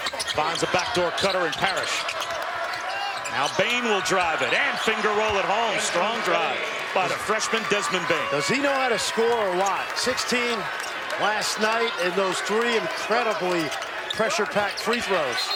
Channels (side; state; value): both; identical; correlation 1.00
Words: Finds a backdoor cutter in Parrish. Now Bane will drive it, and finger roll at home. Strong drive by the freshman Desmond Bane. Does he know how to score or what? 16 last night, and those 3 incredibly pressure-packed free throws.